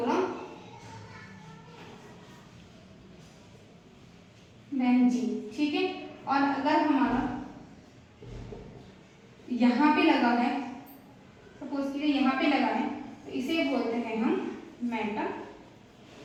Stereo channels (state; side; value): identical; both; correlation 1.00